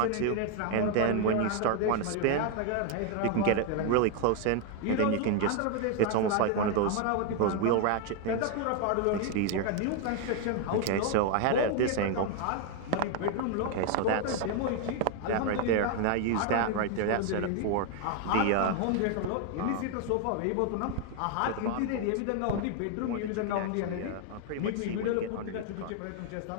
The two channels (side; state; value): both; different; correlation 0.01